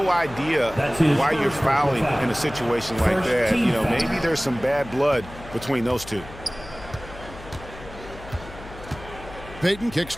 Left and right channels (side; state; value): left; noise; hum, 16 dB below the sound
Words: idea why you're fouling in a situation like that. You know, maybe there's some bad blood between those two. Peyton kicks